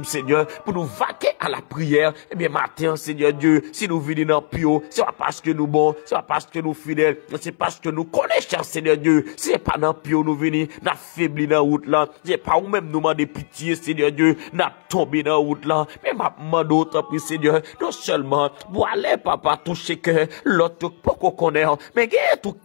Seigneur, pour nous vaquer à la prière, et bien matin Seigneur Dieu, si nous venons dans pio, c'est pas parce que nous bons, c'est pas parce que nous fidèles, c'est parce que nous connaissons Seigneur Dieu, c'est pas dans pio nous venons, n'a faibli dans route là, c'est pas ou même nous demander pitié Seigneur Dieu, n'a tombé dans route là, mais ma demande autant pour Seigneur, non seulement, pour aller papa toucher que l'autre pas qu'on connaît, mais il y a tout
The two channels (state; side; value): silent; right; 65 dB below the other